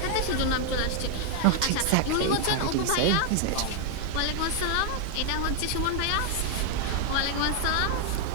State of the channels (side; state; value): both; different; correlation 0.00